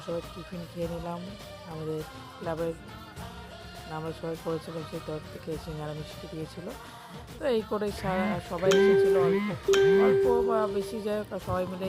সবাই টিফিন খেয়ে নিলাম। আমাদের ক্লাবের আমরা সবাই করেছিলাম, সেই তরফ থেকে সিঙ্গারা মিষ্টি দিয়েছিল। তো এই করে সবাই এসেছিলো, অল্প অল্প বা বেশি, যাই হোক সবাই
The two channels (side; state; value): both; identical; correlation 1.00